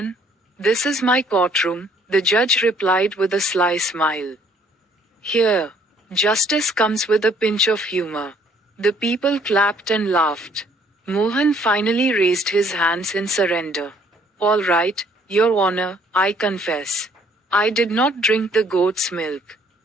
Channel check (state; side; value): normal; both; correlation 0.61